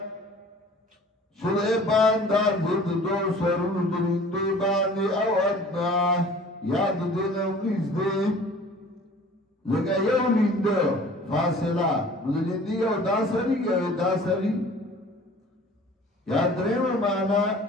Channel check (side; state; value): both; normal; correlation 0.48